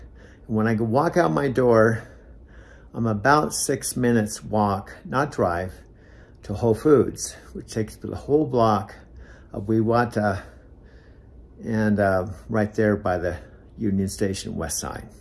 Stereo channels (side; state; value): both; identical; correlation 1.00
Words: When I walk out my door, I'm about 6 minutes walk, not drive, to Whole Foods, which takes the whole block of Wewata and right there by the Union Station west side.